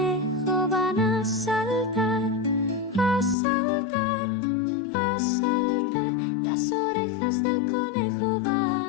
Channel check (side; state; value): right; drops out; at 3.4 s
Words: van a saltar, a saltar, a saltar. Las orejas del conejo